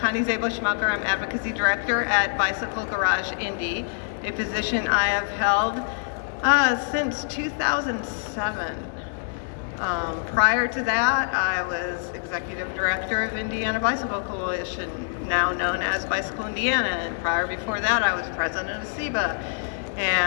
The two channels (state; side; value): silent; right; digital silence